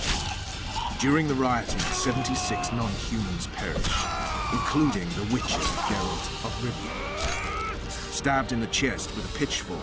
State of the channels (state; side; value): identical; both; correlation 1.00